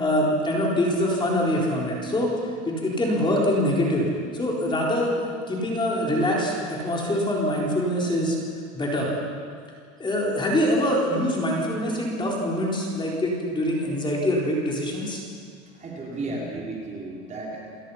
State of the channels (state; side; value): normal; both; correlation 0.40